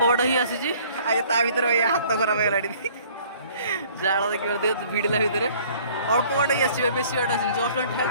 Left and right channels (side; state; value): both; inverted; correlation -0.55